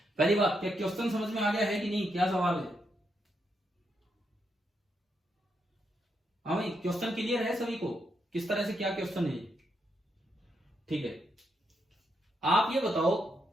पहली बात, क्या क्वेश्चन समझ में आ गया है कि नहीं, क्या सवाल है? हाँ भाई, क्वेश्चन क्लियर है सभी को, किस तरह से क्या क्वेश्चन है? ठीक है, आप ये बताओ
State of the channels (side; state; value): both; normal; correlation 0.80